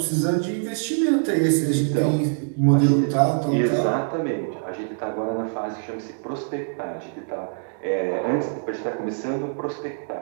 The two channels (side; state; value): left; silent; digital silence